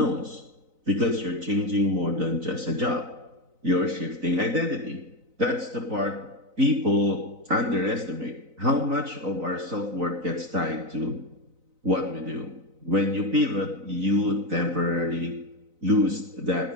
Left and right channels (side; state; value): left; late; 4.0 ms